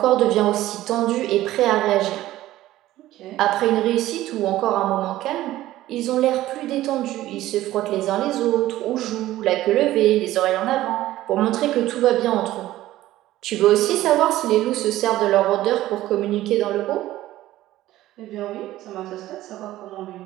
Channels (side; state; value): left; quieter; 15.1 dB